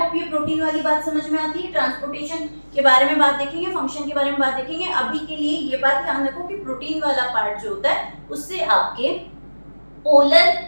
ये प्रोटीन वाली बात समझ में आती है। ट्रांसपोर्टेशन के बारे में बात देखेंगे, फंक्शन के बारे में बात देखेंगे। अभी के लिए ये बात ध्यान रखो कि प्रोटीन वाला पार्ट जो होता है उससे आपके पोलर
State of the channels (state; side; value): inverted; both; correlation -1.00